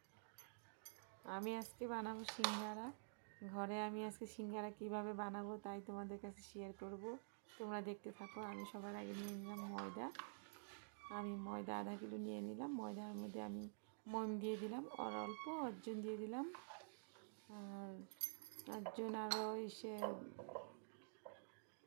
আমি আজকে বানাবো সিঙ্গারা। ঘরে আমি আজকে সিঙ্গারা কীভাবে বানাবো তাই তোমাদের কাছে শেয়ার করব। তোমরা দেখতে থাকো। আমি সবার আগে নিয়ে নিলাম ময়দা। আমি ময়দা আধা কিলো নিয়ে নিলাম। ময়দার মধ্যে আমি মন দিয়ে দিলাম, আর অল্প অর্জুন দিয়ে দিলাম, আর অর্জুন আরও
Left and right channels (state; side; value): silent; left; digital silence